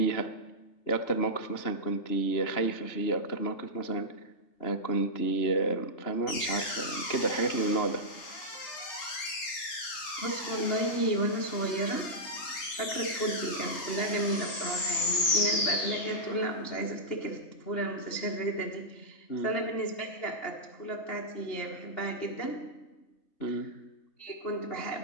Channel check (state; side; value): late; right; 3.3 ms